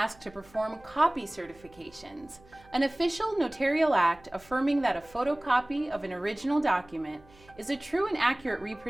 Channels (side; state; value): right; noise; hum, 27 dB below the sound